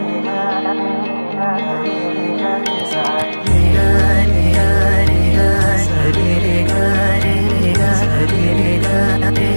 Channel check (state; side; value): inverted; both; correlation -1.00